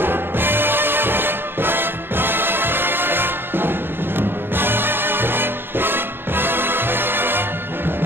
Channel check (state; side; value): late; left; 0.10 ms